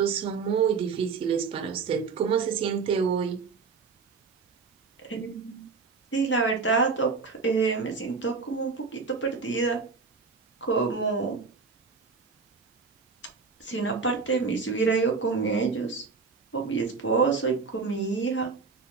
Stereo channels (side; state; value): left; quieter; 4.9 dB